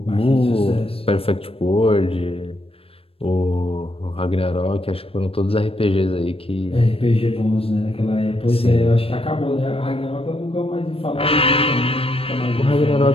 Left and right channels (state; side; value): late; right; 0.28 ms